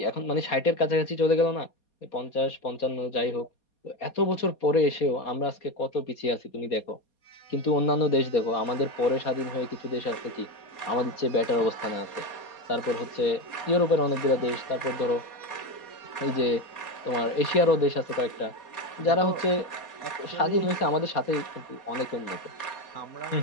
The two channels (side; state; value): right; late; 4.2 ms